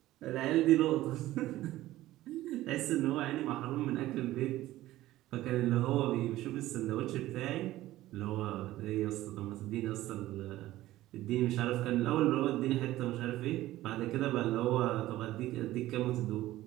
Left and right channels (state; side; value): quieter; left; 15.7 dB